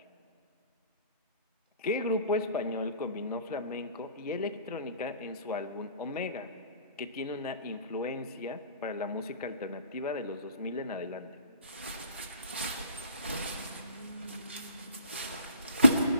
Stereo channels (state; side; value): inverted; both; correlation -0.49